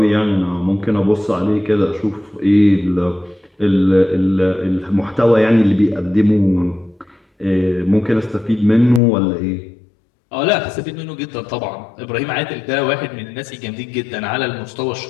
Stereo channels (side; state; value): right; drops out; at 9.0 s